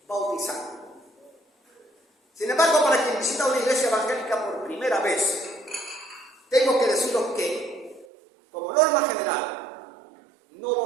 bautizar. Sin embargo, para quien visita una iglesia evangélica por primera vez, tengo que deciros que, como norma general, no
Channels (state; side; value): drops out; left; at 8.1 s